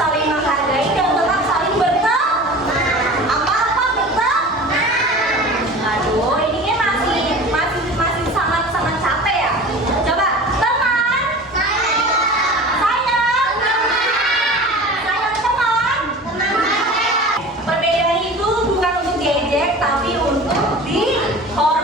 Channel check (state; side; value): normal; both; correlation 0.38